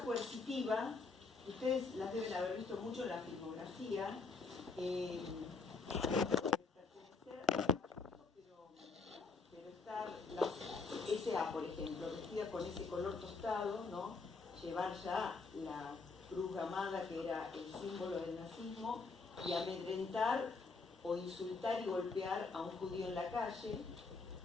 coercitiva, ustedes las deben haber visto mucho en la filmografía, pero estar la SA, por ejemplo, vestida con ese color tostado, ¿no? Llevar ya la cruz gamada, que era el símbolo del nazismo, y amedrentar o insultar y golpear a un judío en la calle,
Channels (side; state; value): right; quieter; 4.3 dB